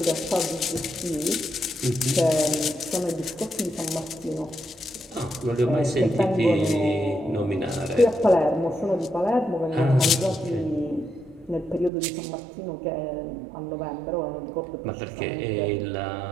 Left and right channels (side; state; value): left; drops out; at 11.9 s